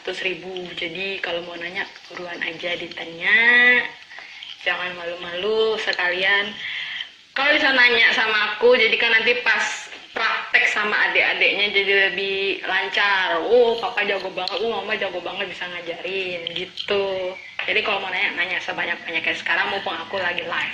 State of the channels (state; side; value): identical; both; correlation 1.00